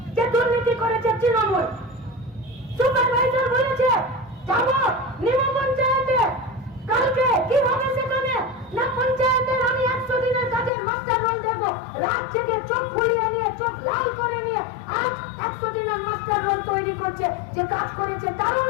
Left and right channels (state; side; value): drops out; right; at 10.7 s